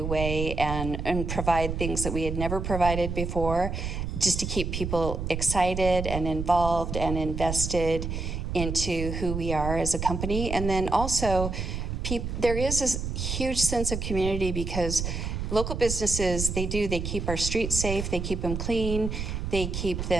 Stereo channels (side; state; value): right; noise; rumble, 4 dB below the sound